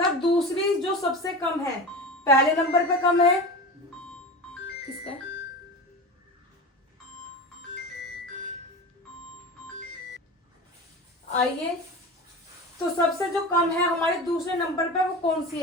दूसरी जो सबसे कम है, पहले नंबर पे कम है, किसका है, आइए तो सबसे जो कम है हमारे दूसरे नंबर पे वो कौन सी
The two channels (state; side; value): normal; both; correlation 0.29